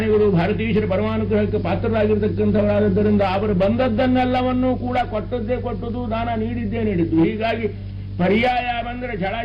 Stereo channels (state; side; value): identical; both; correlation 1.00